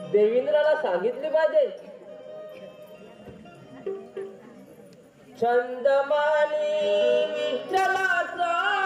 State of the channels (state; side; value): identical; both; correlation 1.00